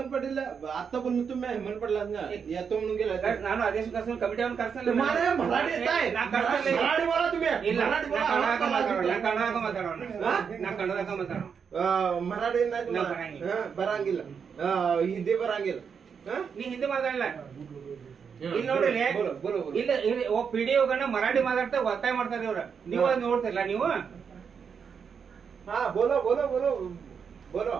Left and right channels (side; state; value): left; quieter; 6.6 dB